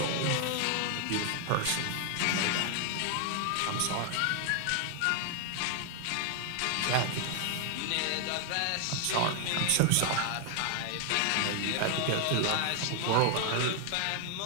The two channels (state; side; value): different; both; correlation 0.00